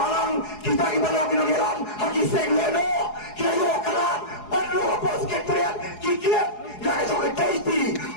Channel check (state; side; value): late; right; 4.8 ms